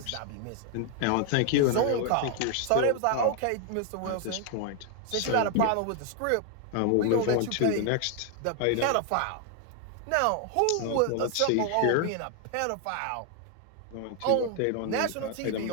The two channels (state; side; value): different; both; correlation 0.00